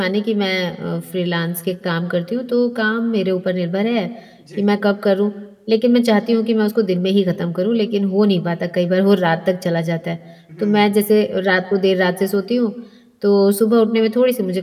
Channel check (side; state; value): both; identical; correlation 1.00